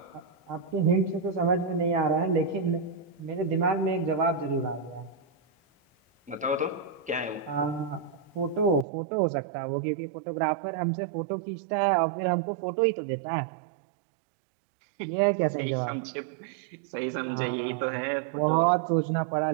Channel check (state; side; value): drops out; left; at 8.8 s